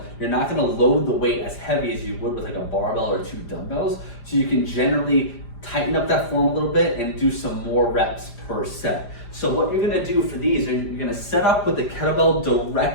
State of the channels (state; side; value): late; right; 4.9 ms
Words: you're not gonna load the weight as heavy as you would with like a barbell or 2 dumbbells. So you can generally tighten up that form a little bit and do some more reps per set. So what you're gonna do for these, you're gonna set up with the kettlebell